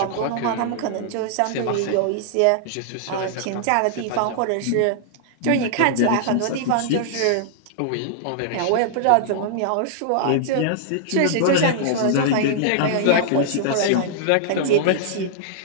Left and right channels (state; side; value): different; both; correlation -0.01